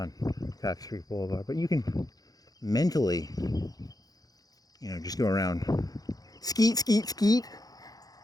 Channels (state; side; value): late; right; 0.18 ms